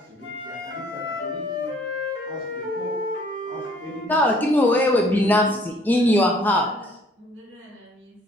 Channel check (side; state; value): both; normal; correlation 0.58